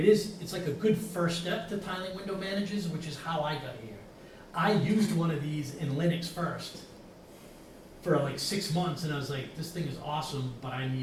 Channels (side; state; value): both; identical; correlation 1.00